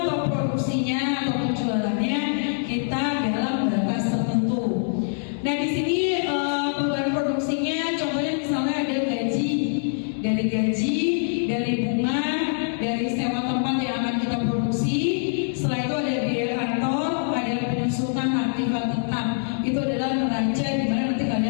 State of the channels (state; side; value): silent; right; digital silence